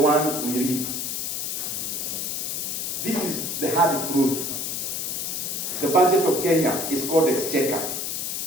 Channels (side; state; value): left; noise; hiss, 2 dB below the sound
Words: we read. This is the hard truth. The budget of Kenya is called exchequer.